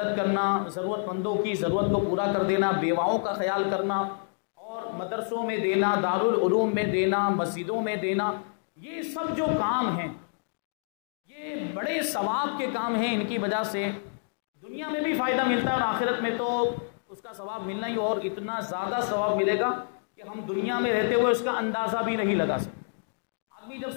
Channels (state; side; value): silent; right; digital silence